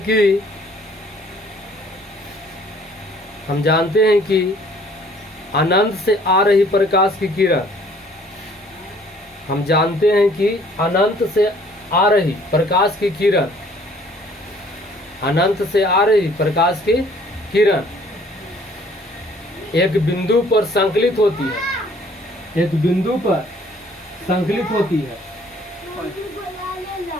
कि, हम जानते हैं कि अनंत से आ रही प्रकाश की किरण, हम जानते हैं कि अनंत से आ रही प्रकाश की किरण, अनंत से आ रही प्रकाश की किरण एक बिंदु पर संकलित होती है, एक बिंदु पर संकलित होती है,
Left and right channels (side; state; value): both; normal; correlation 0.57